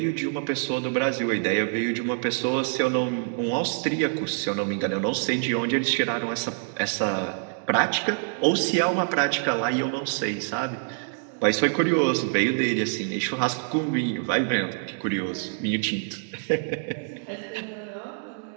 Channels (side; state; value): left; silent; digital silence